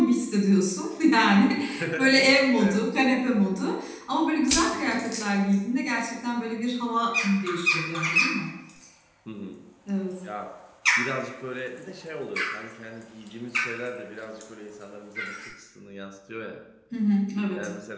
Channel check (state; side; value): identical; both; correlation 1.00